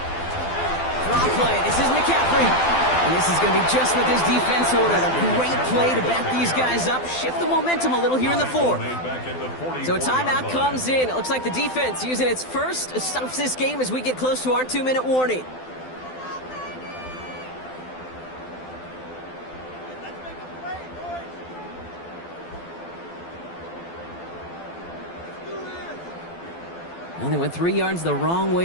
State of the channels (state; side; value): late; right; 12 ms